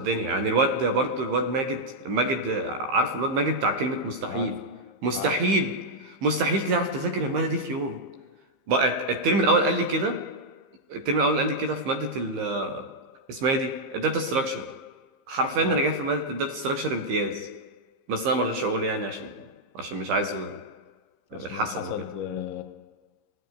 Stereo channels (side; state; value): left; late; 15 ms